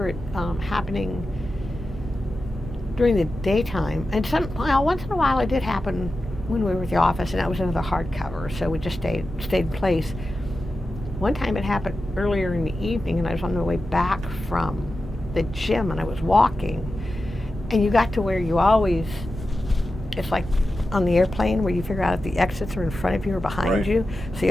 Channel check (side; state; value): both; normal; correlation 0.92